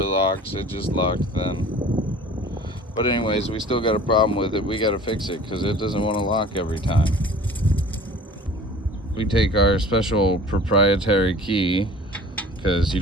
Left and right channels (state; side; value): normal; both; correlation 0.45